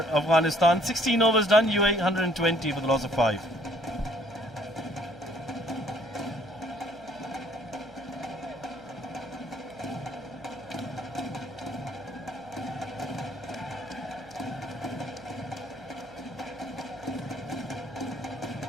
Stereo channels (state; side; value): noise; right; hum, 25 dB below the sound